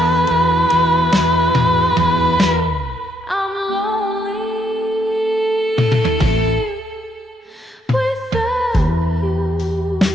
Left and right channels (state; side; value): normal; both; correlation 0.76